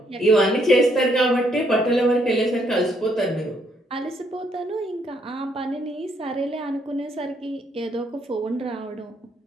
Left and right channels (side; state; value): both; normal; correlation 0.71